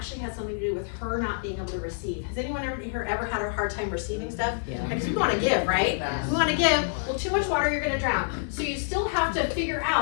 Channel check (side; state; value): right; silent; digital silence